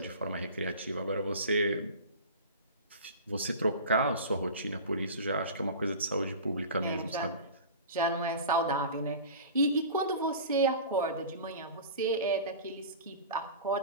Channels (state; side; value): inverted; both; correlation -0.36